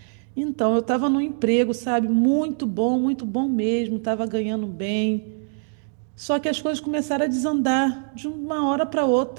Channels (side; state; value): left; silent; 63 dB below the other